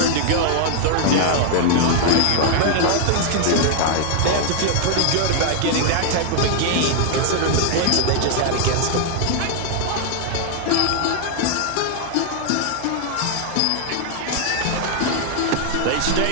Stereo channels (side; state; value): both; different; correlation 0.00